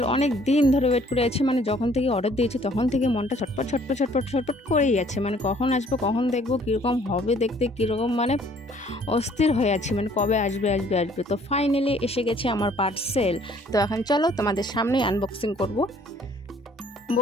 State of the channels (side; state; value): both; normal; correlation 0.59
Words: অনেক দিন ধরে ওয়েট করে আছি, মানে যখন থেকে অর্ডার দিয়েছি তখন থেকে মনটা ছটপট ছটপট ছটপট ছটপট করেই আছে, মানে কখন আসবে, কখন দেখবো, কীরকম হবে দেখতে, কীরকম মানে অস্থির হয়ে আছি, মানে কবে আসবে আসবে আসবে। তো ফাইনালি এসে গেছে আমার পার্সেল। তো এখন চলো তোমাদের সামনেই আনবক্সিং করব।